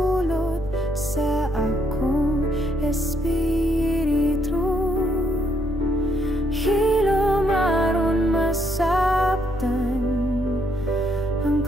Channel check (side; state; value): left; noise; rumble, 14 dB below the sound